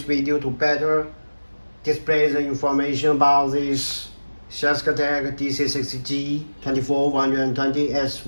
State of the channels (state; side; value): inverted; both; correlation -1.00